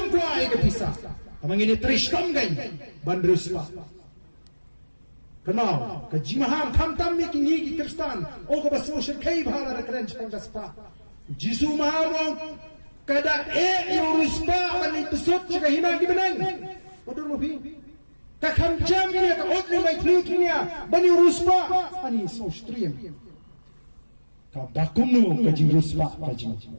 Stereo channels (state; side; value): inverted; both; correlation -1.00